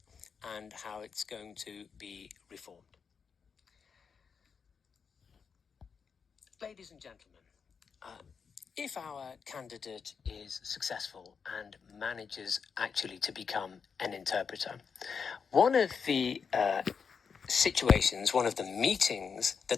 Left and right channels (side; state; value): right; quieter; 6.1 dB